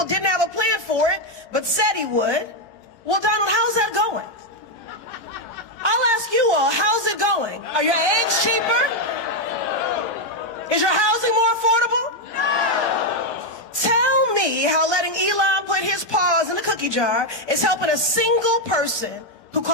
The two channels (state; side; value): late; right; 17 ms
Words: didn't have a plan for it, but said he would. Well, Donald, how's that going? I'll ask you all, how's it going? Are your eggs cheaper? Is your housing more affordable? No! Tell me how letting Elon put his paws in the cookie jar is helping a single person who